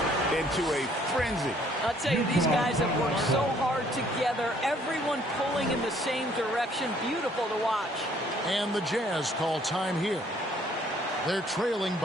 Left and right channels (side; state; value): both; normal; correlation 0.62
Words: into a frenzy. I'll tell you, these guys have worked so hard together. Everyone pulling in the same direction. Beautiful to watch. And the Jazz call time here. They're trailing